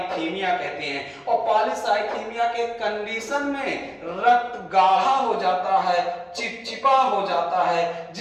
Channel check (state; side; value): identical; both; correlation 1.00